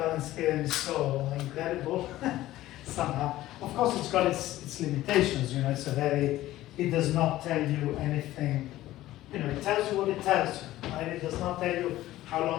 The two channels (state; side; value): quieter; right; 15.4 dB